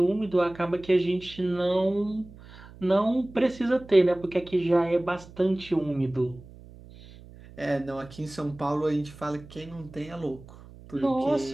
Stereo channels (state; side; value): noise; right; hum, 20 dB below the sound